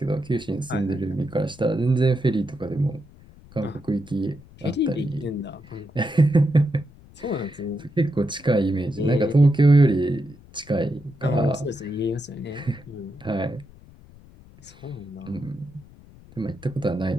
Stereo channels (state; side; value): noise; left; rumble, 23 dB below the sound